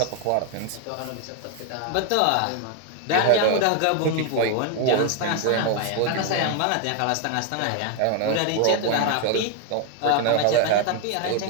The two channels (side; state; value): both; different; correlation 0.00